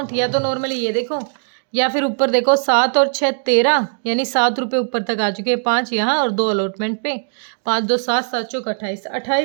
या तो नॉर्मली ये देखो, या फिर ऊपर देखो, 7 और 6 13, यानी 7 रुपये ऊपर तक आ चुके हैं, 5 यहाँ और 2 अलॉटमेंट पे, 5 2 7 7 चौक 28,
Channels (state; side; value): silent; left; 66 dB below the other